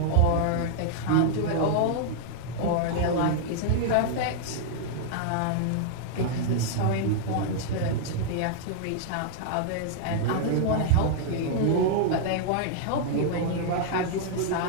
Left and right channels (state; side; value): different; both; correlation -0.01